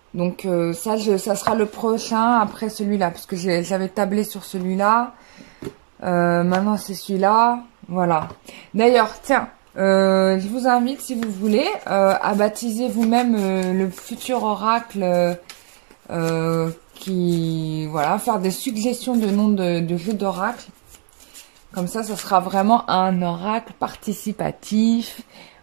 donc, ça sera le prochain après celui-là. Parce que j'avais tablé sur celui-là. Maintenant, c'est celui-là. Voilà. D'ailleurs, tiens. Je vous invite, si vous voulez, à baptiser vous-même le futur oracle voilà, faire des suggestions de noms de jeux d'oracle. Comme ça sera vraiment un oracle participatif.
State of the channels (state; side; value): silent; left; digital silence